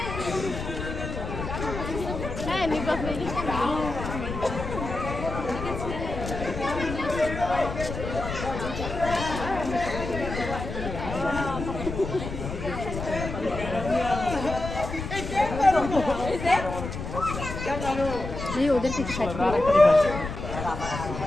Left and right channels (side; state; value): left; noise; rumble, 6 dB below the sound